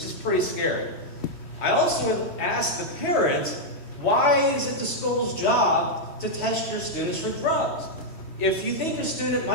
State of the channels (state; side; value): late; right; 3.1 ms